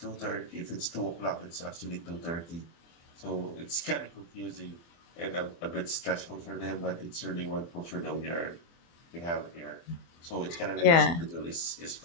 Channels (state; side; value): late; right; 24 ms